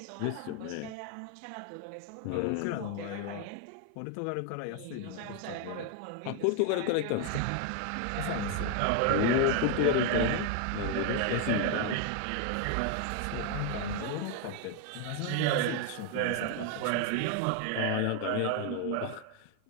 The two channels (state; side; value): different; both; correlation 0.00